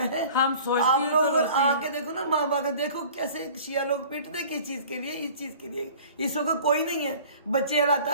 ہے. آپ لوگ آ کے دیکھو نا, ماں باپ دیکھو کیسے شیعہ لوگ پیٹتے کس چیز کے لیے, اس چیز کے لیے. اس وقت کوئی نہیں ہے, بچے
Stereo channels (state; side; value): inverted; both; correlation -0.46